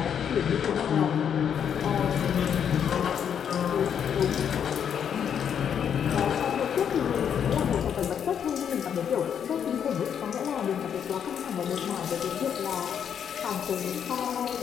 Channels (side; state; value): right; quieter; 8.3 dB